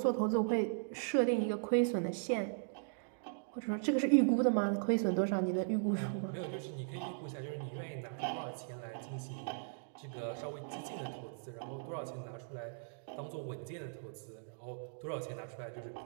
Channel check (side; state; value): left; silent; digital silence